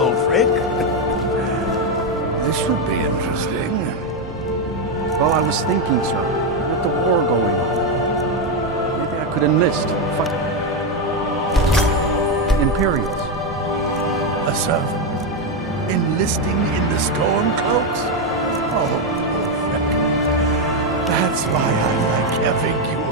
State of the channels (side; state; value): both; normal; correlation 0.06